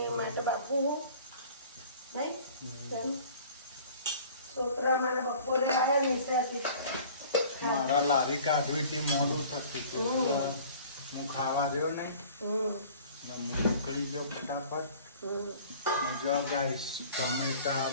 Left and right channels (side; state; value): both; inverted; correlation -0.48